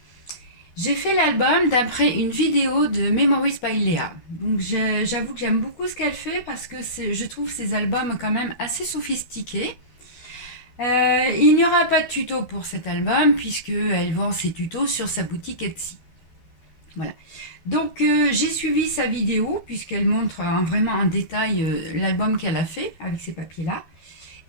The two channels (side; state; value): right; late; 12 ms